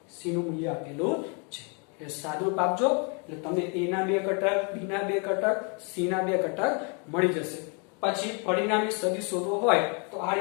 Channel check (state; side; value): quieter; right; 36.0 dB